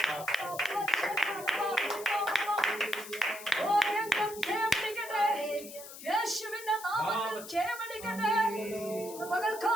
യേശുവിന്റെ നാമത്തിൽ ക്ഷയമെടുക്കട്ടെ.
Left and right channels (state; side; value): noise; left; hiss, 13 dB below the sound